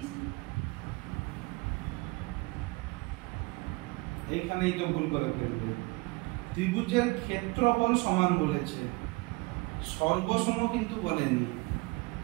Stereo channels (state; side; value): quieter; left; 24.9 dB